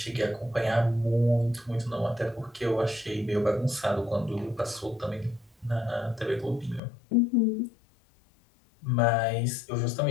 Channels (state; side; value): drops out; right; at 6.8 s